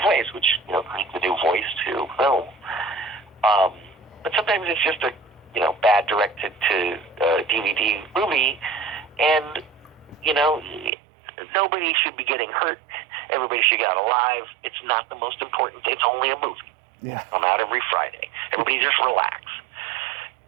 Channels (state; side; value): drops out; left; at 10.9 s